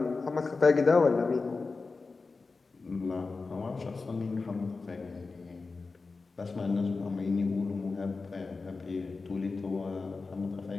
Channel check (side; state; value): right; quieter; 4.1 dB